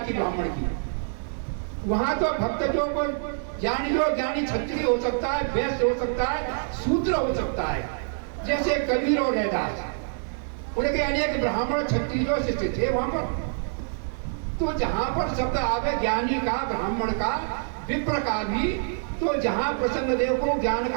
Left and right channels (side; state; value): left; silent; digital silence